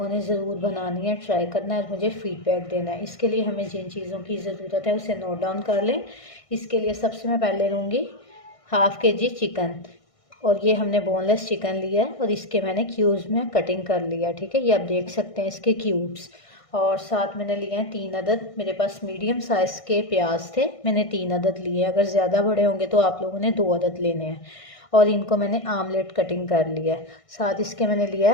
ने ज़रूर बनानी है, ट्राई करना है और मुझे फीडबैक देना है। इसके लिए हमें जिन चीज़ों की ज़रूरत है उसे नोट डाउन कर लें। इसके लिए सबसे मैं पहले लूँगी हाफ़ kg चिकन, और ये हमने बोनलेस चिकन लिया है और इसके मैंने क्यूब्स में कटिंग कर लिया, ठीक है। ये आप देख सकते हैं इसके क्यूब्स। और साथ मैंने लिए हैं 3 अदद, मेरे पास मीडियम साइज़ के प्याज थे, मैंने 3 अदद लिए। अगर ज़्यादा बड़े होंगे तो आप लोगों ने 2 अदद लेने हैं। और इनको मैंने आमलेट कटिंग कर लिया है। साथ इसके मैंने लिया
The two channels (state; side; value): late; right; 1.6 ms